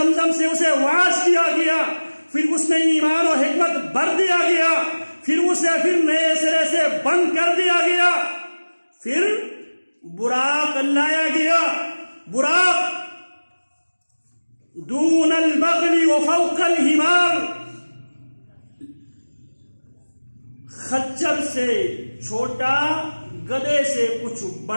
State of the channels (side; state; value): both; inverted; correlation -1.00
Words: سے اسے واش کیا گیا، پھر اس میں ایمان و حکمت بھر دیا گیا، پھر اسے نئے سرے سے بند کر دیا گیا، پھر براق لایا گیا، براق دون البغل وفوق الحمار، خچر سے چھوٹا، گدھے سے کچھ